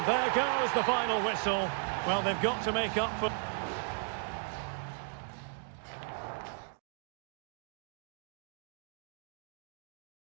there goes the final whistle. Well, they've got to make up for...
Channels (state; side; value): silent; left; 54 dB below the other